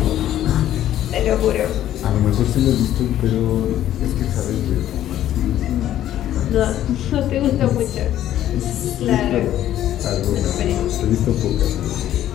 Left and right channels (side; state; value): right; quieter; 12.2 dB